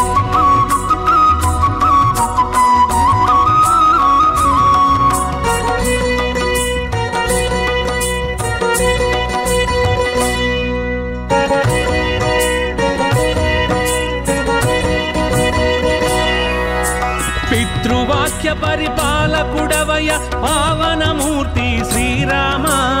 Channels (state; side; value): identical; both; correlation 1.00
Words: పితృవాక్య పరిపాలకుడవయ పావనమూర్తి శ్రీరామ